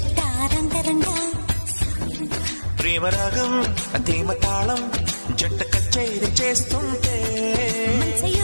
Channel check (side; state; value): both; inverted; correlation -1.00